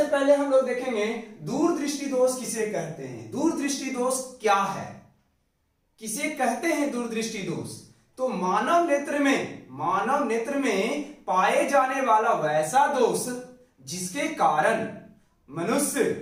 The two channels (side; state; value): both; identical; correlation 1.00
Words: पहले हम लोग देखेंगे दूरदृष्टि दोष किसे कहते हैं। दूरदृष्टि दोष क्या है, किसे कहते हैं दूरदृष्टि दोष? तो मानव नेत्र में पाए जाने वाला वैसा दोष जिसके कारण मनुष्य